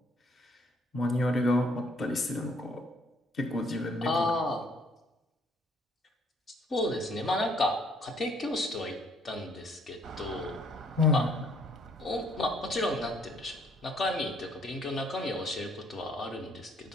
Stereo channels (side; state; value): both; normal; correlation 0.64